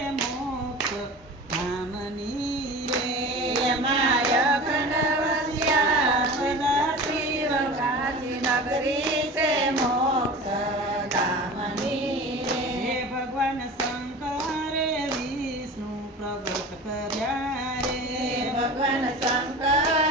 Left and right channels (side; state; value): both; normal; correlation 0.35